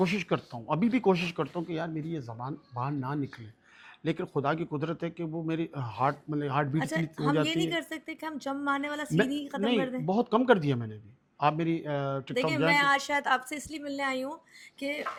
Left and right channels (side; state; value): both; identical; correlation 1.00